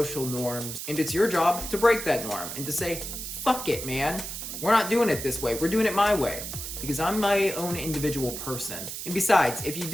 norms, and it's your job to break that norm and to say, fuck it, man. We're not doing it this way. We're doing it my way. Because I'm my own individual person. And besides, if you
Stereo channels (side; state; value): right; noise; hiss, 7 dB below the sound